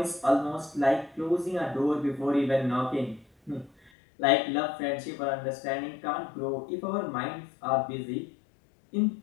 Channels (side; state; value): right; drops out; at 3.9 s